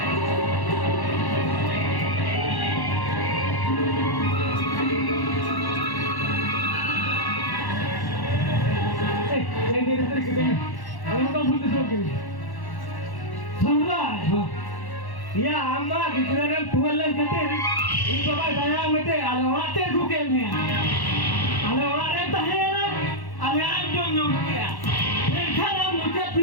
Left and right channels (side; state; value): right; late; 1.1 ms